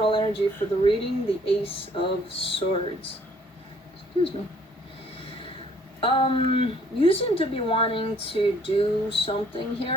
energy for the reading, the Ace of Swords. Excuse me. You seem to be wanting to do something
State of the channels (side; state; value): both; normal; correlation 0.61